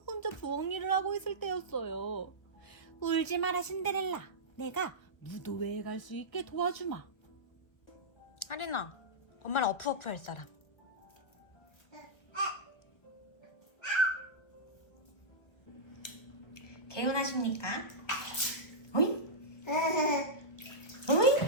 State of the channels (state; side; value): late; right; 1.4 ms